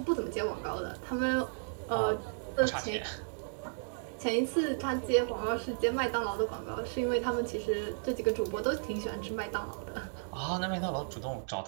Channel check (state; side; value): silent; left; 55 dB below the other